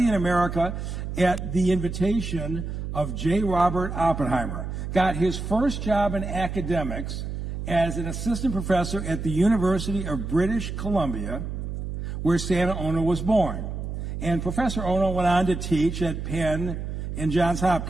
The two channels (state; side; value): noise; right; hum, 5 dB below the sound